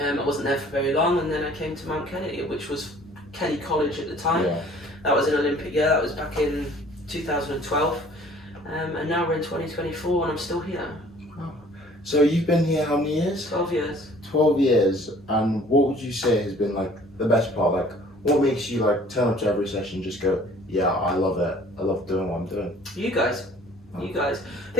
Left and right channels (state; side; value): normal; both; correlation 0.53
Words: wasn't there for very long, and then I came to Mount Kelly, which was Kelly College at the time. That was an Olympic year. That was back in 2012, and now we're in 2024 and I'm still here. Oh. So you've been here how many years? 12 years. 12 years, and what would you say has been the best part? What makes you turn up to every session and just go, yeah, I love it, I love doing what I'm doing? You guys. I